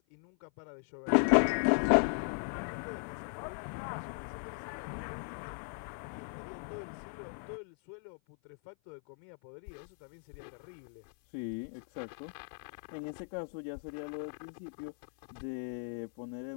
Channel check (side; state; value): right; silent; 53 dB below the other